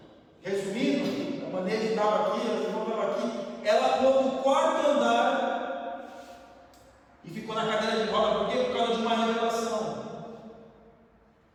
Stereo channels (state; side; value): identical; both; correlation 1.00